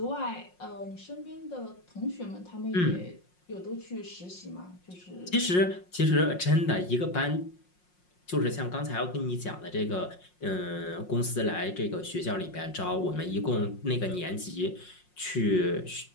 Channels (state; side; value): late; right; 5.6 ms